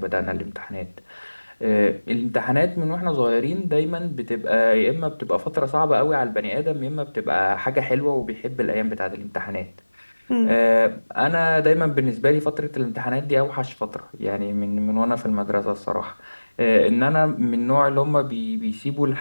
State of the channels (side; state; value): both; inverted; correlation -1.00